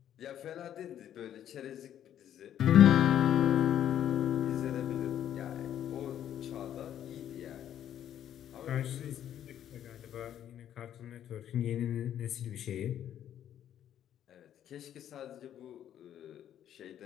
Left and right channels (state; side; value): quieter; right; 10.6 dB